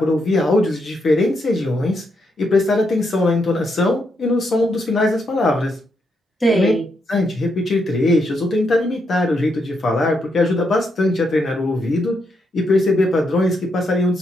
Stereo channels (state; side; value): normal; both; correlation 0.80